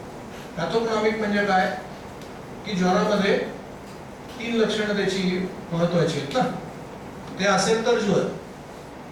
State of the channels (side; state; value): both; identical; correlation 1.00